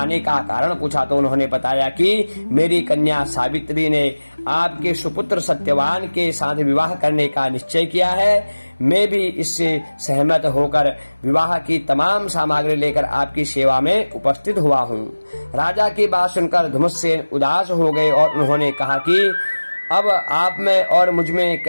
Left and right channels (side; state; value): both; inverted; correlation -1.00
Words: का कारण पूछा तो उन्होंने बताया कि मेरी कन्या सावित्री ने आपके सुपुत्र सत्यवान के साथ विवाह करने का निश्चय किया है। मैं भी इससे सहमत होकर विवाह की तमाम सामग्री लेकर आपकी सेवा में उपस्थित हुआ हूँ। राजा की बात सुनकर धुमसेन उदास हो गए और उन्होंने कहा कि अब आप में और मुझ में